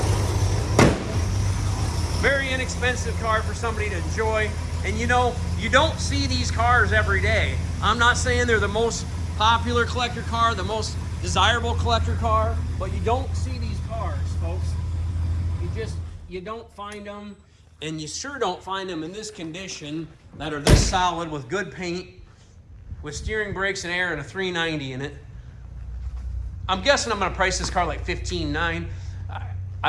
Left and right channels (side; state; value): both; identical; correlation 1.00